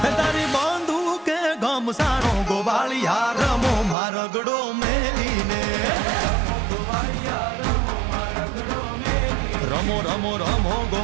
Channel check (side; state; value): left; drops out; at 4.0 s